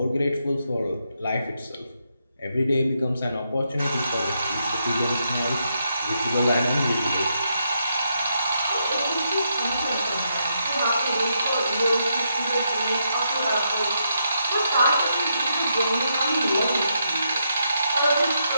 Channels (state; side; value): inverted; both; correlation -0.80